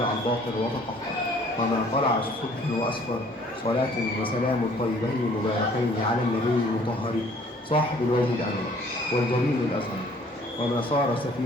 الباطل وتطهر، وما طلع الصبح وأسفر. صلاة وسلام طيبين مباركين على النبي المطهر صاحب الوجه الأنور والجميل الأزهر، وما صار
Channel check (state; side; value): normal; both; correlation 0.56